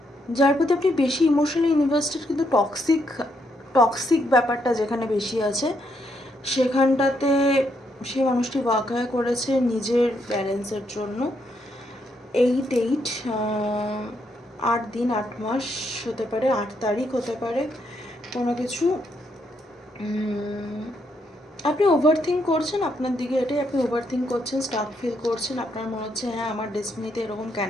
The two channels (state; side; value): normal; both; correlation 0.77